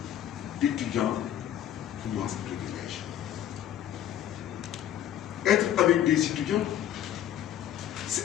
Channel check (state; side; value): quieter; right; 11.1 dB